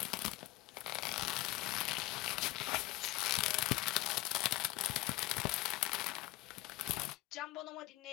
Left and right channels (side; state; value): right; quieter; 19.3 dB